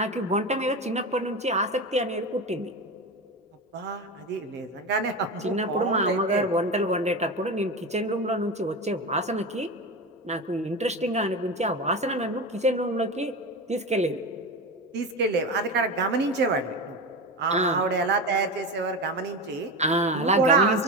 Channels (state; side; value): normal; both; correlation 0.22